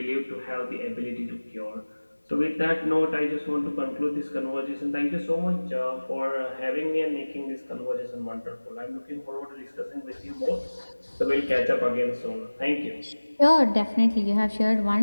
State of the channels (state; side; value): inverted; both; correlation -1.00